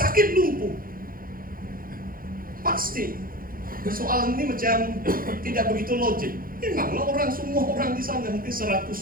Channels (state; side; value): late; left; 0.41 ms